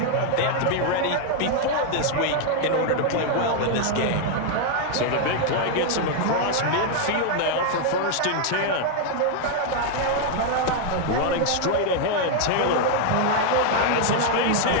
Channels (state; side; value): different; both; correlation 0.00